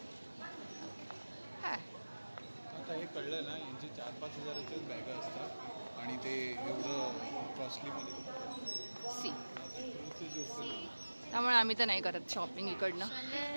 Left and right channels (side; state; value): both; inverted; correlation -1.00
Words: आता हे कळलं ना, यांची 4-5 हजाराच्याच बॅगा असतात आणि ते एवढं कॉस्टलीमध्ये सी, त्यामुळे आम्ही तर नाही करत शॉपिंग इकडनं.